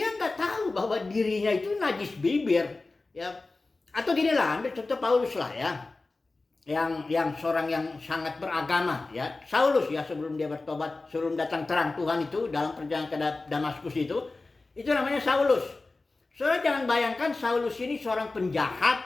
nggak tahu bahwa dirinya itu najis bibir ya. Atau gini lah, ambil contoh Paulus lah ya, yang seorang yang sangat beragama ya, Saulus ya, sebelum dia bertobat, sebelum datang terang Tuhan itu dalam perjalanan ke Damaskus itu namanya Saulus. Saudara jangan bayangkan Saulus ini seorang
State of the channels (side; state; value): right; quieter; 3.4 dB